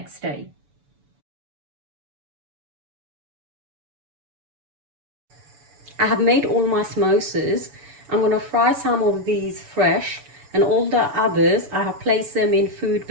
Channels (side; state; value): left; late; 7.0 ms